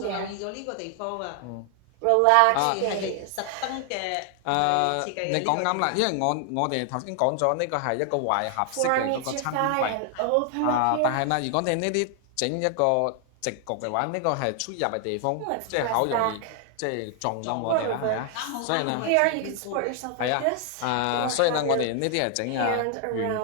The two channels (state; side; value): different; both; correlation 0.00